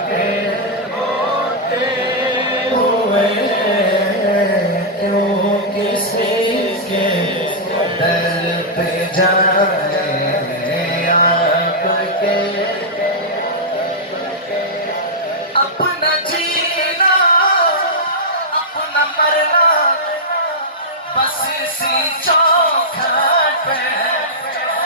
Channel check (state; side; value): normal; both; correlation -0.09